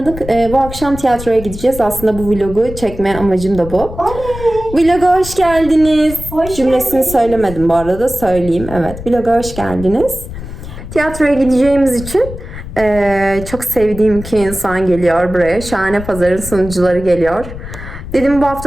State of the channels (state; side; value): noise; left; rumble, 11 dB below the sound